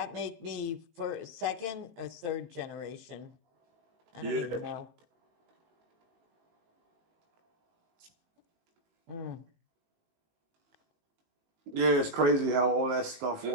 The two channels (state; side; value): late; left; 19 ms